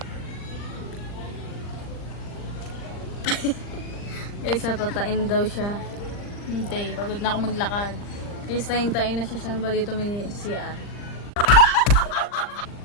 Guys, natatain daw siya. Hindi, pagod na ako maglakad. Guys, tayin-tayin na siya. Saan ba dito may CR?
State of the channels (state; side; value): late; right; 39 ms